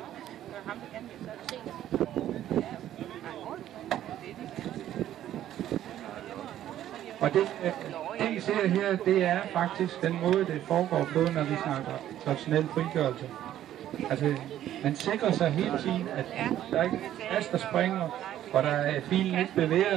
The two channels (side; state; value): left; quieter; 12.1 dB